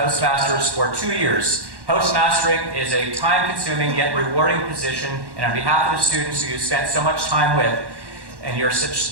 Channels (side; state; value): left; late; 1.1 ms